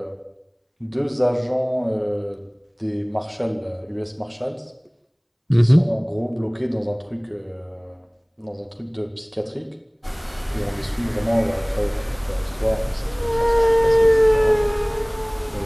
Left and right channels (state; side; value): identical; both; correlation 1.00